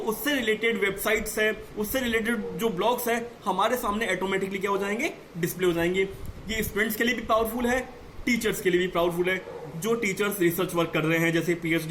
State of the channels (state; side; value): identical; both; correlation 1.00